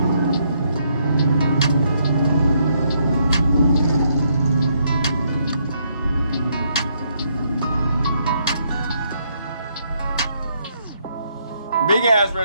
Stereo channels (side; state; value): both; inverted; correlation -0.73